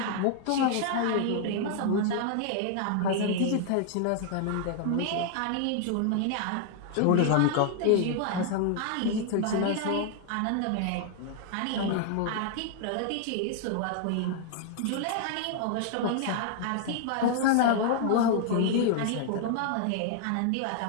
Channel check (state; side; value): different; both; correlation 0.00